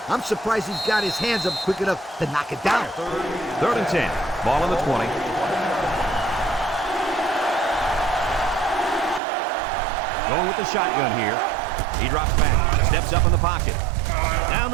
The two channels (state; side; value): drops out; left; at 9.2 s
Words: I'm surprised he's got his hands up quick enough to knock it down. 3rd and 10. Ball on the 20. Going with the shotgun here. He drops back. Steps up in the pocket. Down